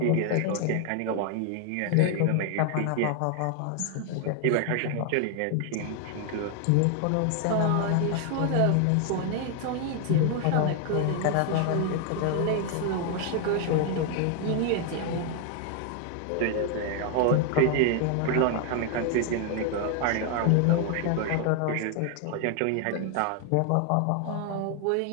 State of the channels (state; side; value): different; both; correlation 0.00